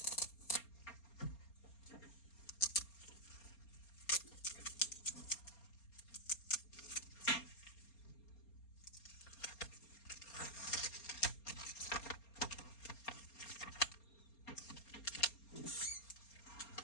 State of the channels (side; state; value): right; late; 4.3 ms